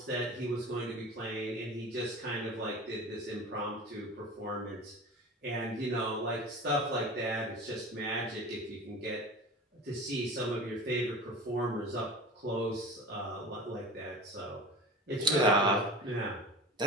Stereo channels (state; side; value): normal; both; correlation 0.36